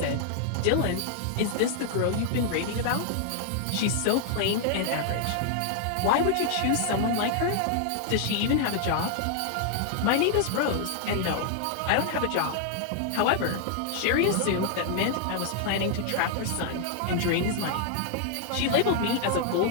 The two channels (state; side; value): different; both; correlation 0.00